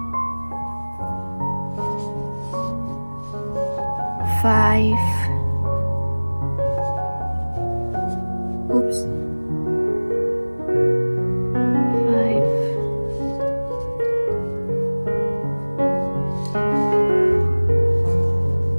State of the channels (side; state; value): both; inverted; correlation -1.00